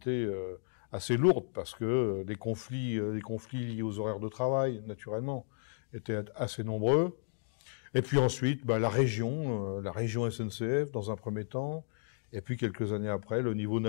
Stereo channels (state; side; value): silent; right; digital silence